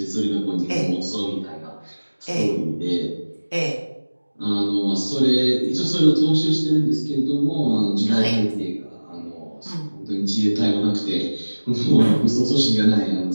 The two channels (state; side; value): inverted; both; correlation -1.00